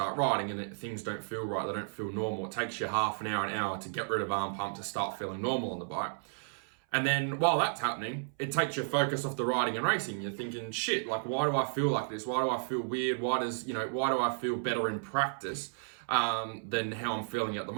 riding and things don't feel right, they don't feel normal. It takes you half an hour to get rid of arm pump to start feeling normal on the bike. And then while that's happening, it takes your focus off the riding and racing. You're thinking, shit, like why do I feel like this? Why do I feel weird? Why do I feel better in practice than how I'm feeling at the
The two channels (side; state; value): left; silent; 56 dB below the other